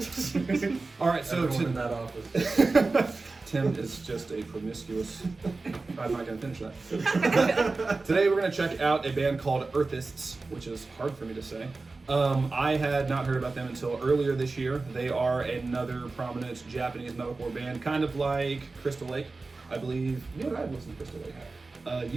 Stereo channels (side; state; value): left; quieter; 3.7 dB